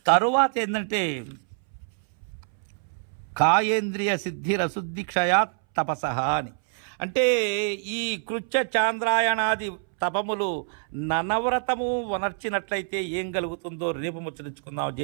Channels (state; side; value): silent; left; 61 dB below the other